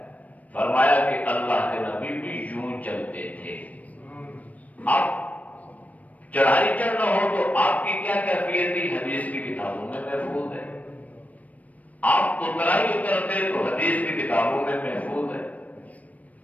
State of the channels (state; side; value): late; right; 0.070 ms